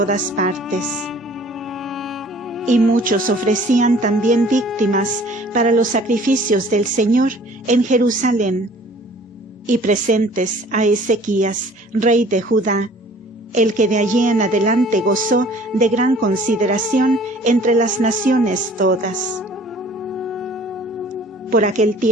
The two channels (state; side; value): normal; both; correlation 0.52